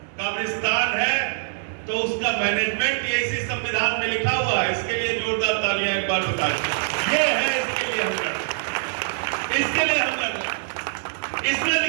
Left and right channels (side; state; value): left; silent; digital silence